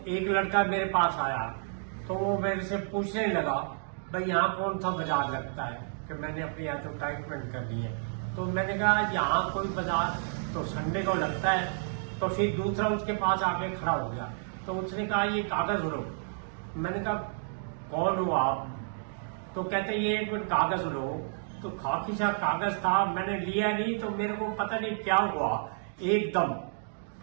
एक लड़का मेरे पास आया तो वो मेरे से पूछने लगा, भाई यहाँ कौन सा बाजार लगता है, कि मैंने अपनी एडवर्टाइजमेंट कर दी है। तो मैंने कहा यहाँ कोई बाजार तो संडे को लगता है। तो फिर दूसरा उसके पास आके खड़ा हो गया तो उसने कहा ये कागज लो। मैंने कहा कौन हो आप? तो कहते ये एक मिनट कागज लो। तो खाकी सा कागज था, मैंने लिया नहीं तो मेरे को पता नहीं क्या हुआ एकदम,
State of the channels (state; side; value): silent; left; digital silence